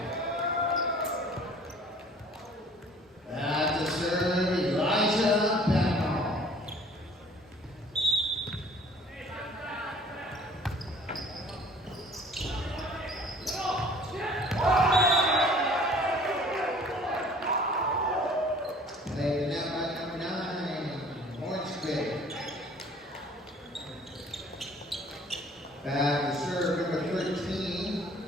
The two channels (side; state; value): both; normal; correlation 0.52